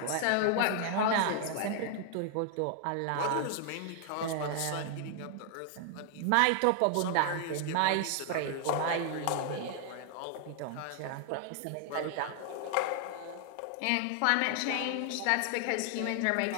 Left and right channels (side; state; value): both; different; correlation 0.00